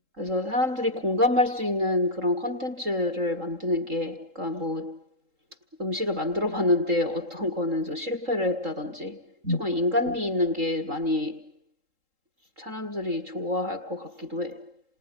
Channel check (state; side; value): late; left; 3.7 ms